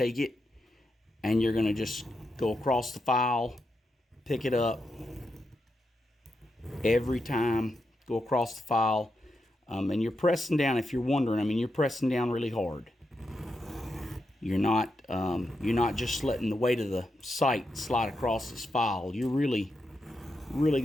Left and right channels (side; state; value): both; normal; correlation 0.85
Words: it and you're going to just go across the file, pick it up every time, go across the file. And you're pressing down, if you're wondering, I mean, you're pressing down really hard. You're not just letting the weight of the sight slide across this file. You're really